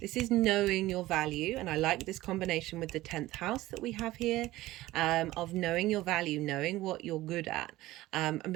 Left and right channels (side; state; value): left; quieter; 17.0 dB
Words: This is knowing your value, and I like this combination with the 10th house that we have here, of knowing your value, knowing what you're good at, and